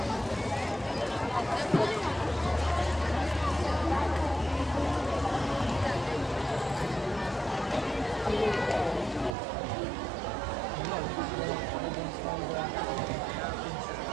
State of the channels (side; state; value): left; drops out; at 9.3 s